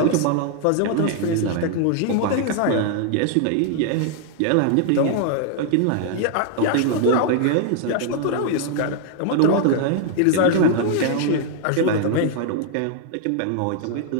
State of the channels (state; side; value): different; both; correlation 0.00